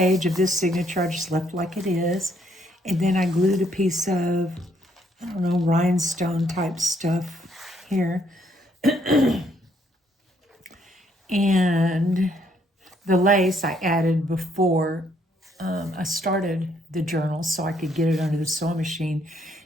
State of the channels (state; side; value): normal; both; correlation 0.69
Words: of this signature I just left like it is. And then I glued a piece of, I don't know, rhinestone type stuff here. And the lace I added before I started the journal so I could get it under the sewing machine.